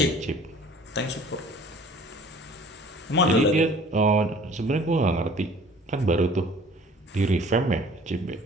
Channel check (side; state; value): both; normal; correlation 0.50